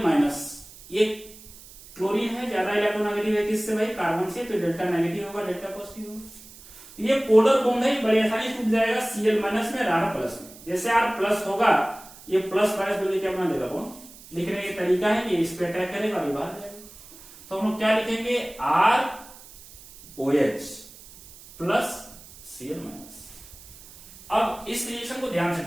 माइनस, ये क्लोरीन है, ज्यादा इलेक्ट्रोनेगेटिव है किससे भाई, कार्बन से, तो डेल्टा नेगेटिव होगा, डेल्टा पॉजिटिव होगा। ये पोलर बॉन्ड है, बड़ी आसानी से टूट जाएगा Cl माइनस में, R प्लस में। जैसे R प्लस होगा, ये प्लस माइनस बोलिए क्या बना देगा बॉन्ड। लिखने का तरीका है कि इस पे अटैक करेगा और बाहर जाएगा। तो हम लोग क्या लिखेंगे, ROH प्लस Cl माइनस। अब इस रिएक्शन को ध्यान से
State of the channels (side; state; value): right; noise; hiss, 20 dB below the sound